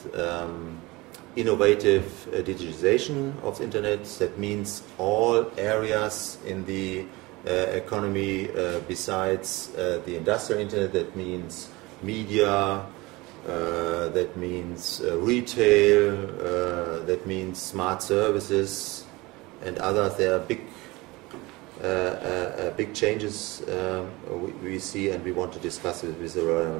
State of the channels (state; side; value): quieter; left; 22.3 dB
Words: innovative digitization of the Internet. That means all areas in the economy besides the industrial Internet. That means media, that means retail, that means smart services and others. There are big changes we see, and we want to discuss it with the